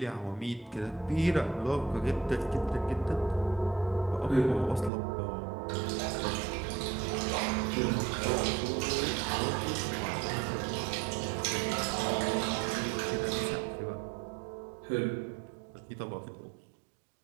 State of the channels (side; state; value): left; drops out; at 4.9 s